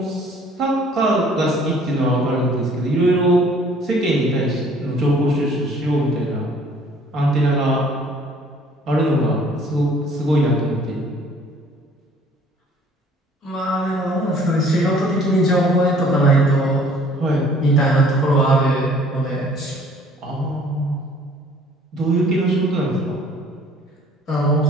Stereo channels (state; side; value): normal; both; correlation 0.56